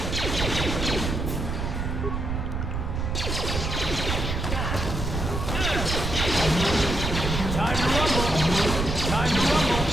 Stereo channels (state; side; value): noise; right; rumble, 2 dB below the sound